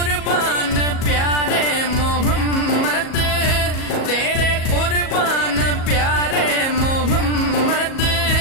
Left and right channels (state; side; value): late; right; 37 ms